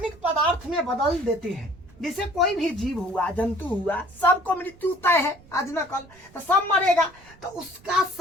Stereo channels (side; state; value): right; noise; rumble, 25 dB below the sound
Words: पदार्थ में बदल देते हैं। जैसे कोई भी जीव हुआ, जंतु हुआ, सबको मृत्यु तय है, आज न कल तो सब मरेगा, तो उसका